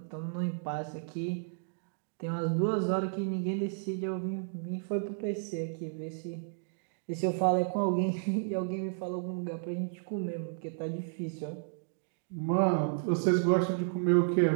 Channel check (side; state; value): left; silent; digital silence